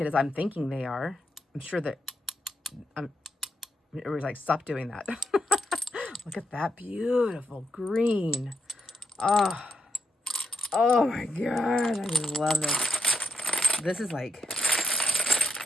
as I'm thinking they are. I'm sure that, it was like, stop doing that. Look at that beautiful green. Oh, oh my God. I just love this. This is like,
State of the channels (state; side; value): normal; both; correlation 0.81